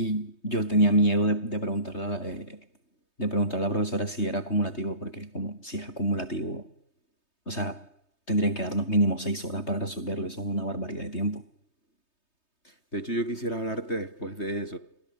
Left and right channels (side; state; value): right; late; 3.2 ms